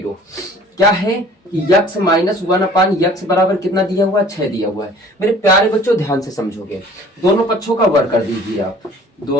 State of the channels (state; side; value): normal; both; correlation 0.50